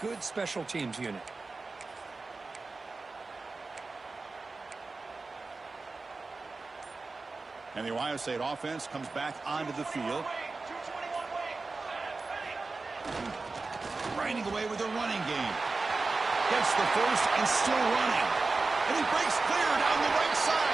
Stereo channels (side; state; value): left; quieter; 3.8 dB